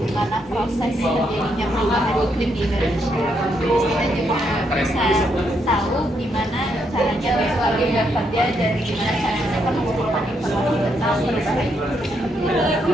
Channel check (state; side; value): normal; both; correlation 0.77